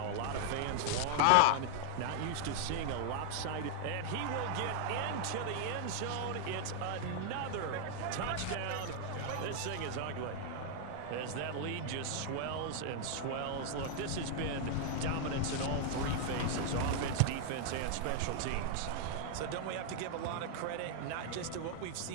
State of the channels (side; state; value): both; different; correlation 0.00